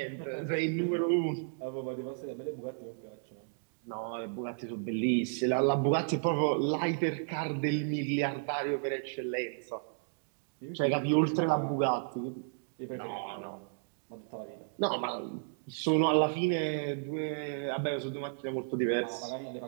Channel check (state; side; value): silent; left; digital silence